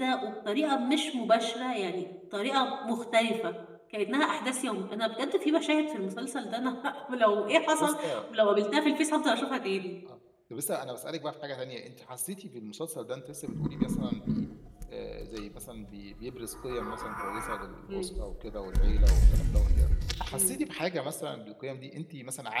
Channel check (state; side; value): identical; both; correlation 1.00